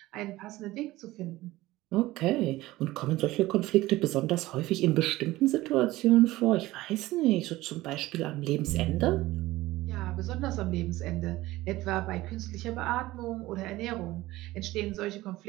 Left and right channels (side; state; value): left; quieter; 17.8 dB